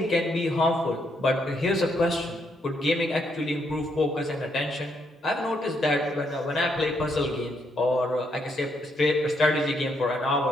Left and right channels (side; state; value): both; normal; correlation 0.76